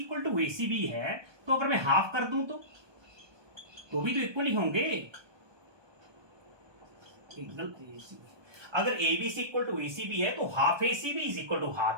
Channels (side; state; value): left; late; 1.2 ms